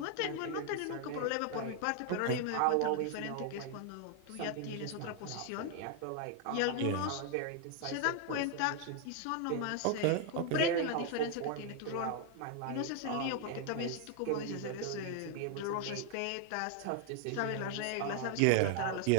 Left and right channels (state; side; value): different; both; correlation 0.00